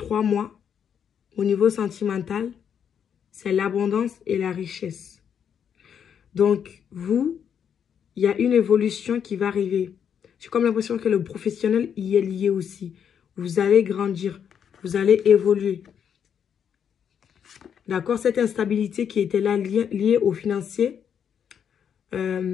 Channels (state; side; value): quieter; right; 8.1 dB